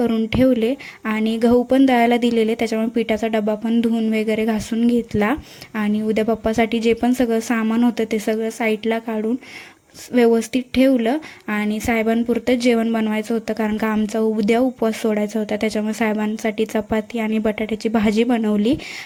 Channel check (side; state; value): both; identical; correlation 1.00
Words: ठेवले आणि गहू पण दळायला दिलेले, त्याच्यामुळे पिठाचा डबा पण धुवून वगैरे घासून घेतला. आणि उद्या बाप्पासाठी जे पण सगळं सामान होतं ते सगळं साईडला काढून व्यवस्थित ठेवलं. आणि साहेबांपुरतं जेवण बनवायचं होतं, कारण का आमचा उद्या उपवास सोडायचा होता, त्याच्यामुळे साहेबांसाठी चपाती आणि बटाट्याची भाजी बनवली